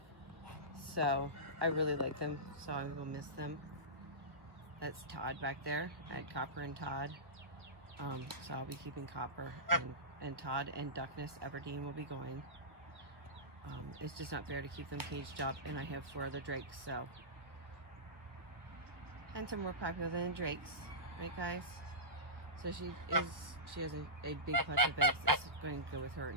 So I really like them, so I will miss them. That's Todd back there. I had Copper and Todd. So I'll be keeping Copper and Todd, and Duckness Aberdeen will be going. It's just not fair to keep them caged up, and I have 4 other drakes, so. Hens are more popular than drakes, right guys? So she has a big clutch of eggs that's going to go with her,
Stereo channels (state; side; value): late; left; 1.4 ms